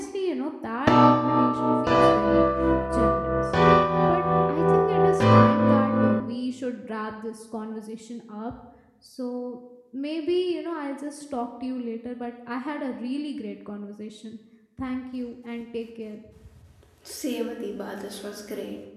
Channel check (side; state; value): both; identical; correlation 1.00